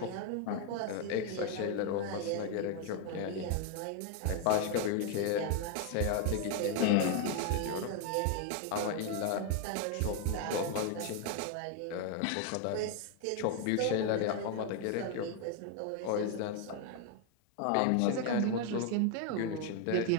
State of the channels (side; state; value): both; different; correlation 0.01